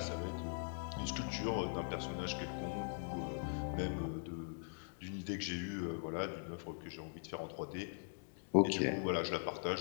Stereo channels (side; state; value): right; silent; digital silence